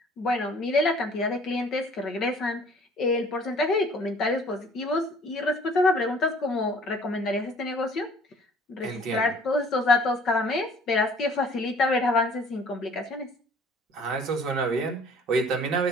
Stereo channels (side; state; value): both; normal; correlation 0.54